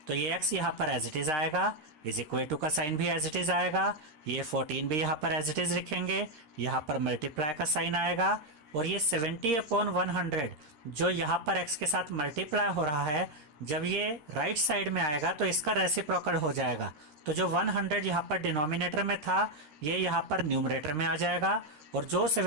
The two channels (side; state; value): left; late; 13 ms